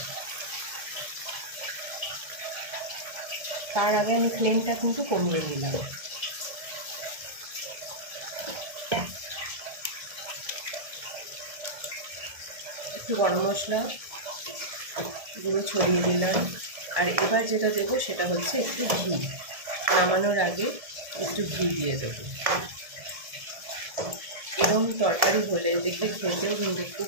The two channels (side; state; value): left; late; 1.7 ms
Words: তার আগে আমি ফ্লেমটা কিন্তু কমিয়ে দিলাম। একটু গরম মশলা গুঁড়ো ছড়িয়ে দিলাম। আর এবার যেটা দেবো সেটা হচ্ছে একটু ঘি, নামানোর আগে একটু ঘি দিয়ে দেবো। এরকম তরকারি হলে দেখবে খেতেও কিন্তু খুব